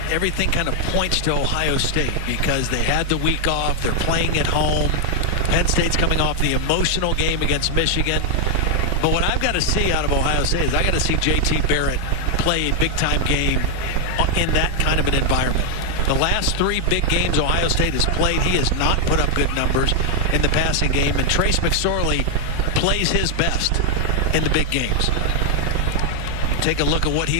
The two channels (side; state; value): both; different; correlation 0.00